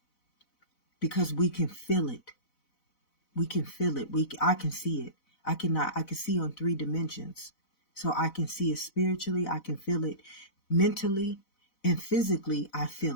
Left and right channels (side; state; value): right; late; 4.0 ms